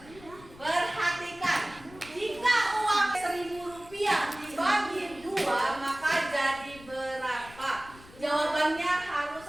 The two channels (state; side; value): noise; left; rumble, 21 dB below the sound